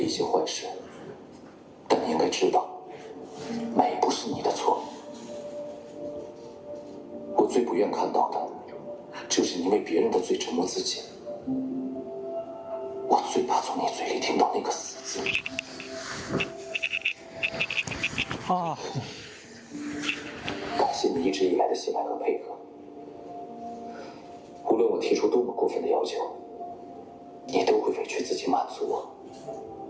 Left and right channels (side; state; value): both; identical; correlation 1.00